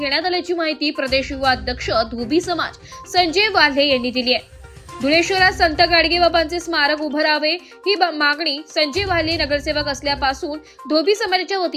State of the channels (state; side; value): identical; both; correlation 1.00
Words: आल्याची माहिती प्रदेश युवा अध्यक्ष धोबी समाज संजय वाल्हे यांनी दिली आहे। धुळे शहरात संत गाडगे बाबांचे स्मारक उभं राहावे ही मागणी संजय वाल्हे नगरसेवक असल्यापासून धोबी समाजाच्या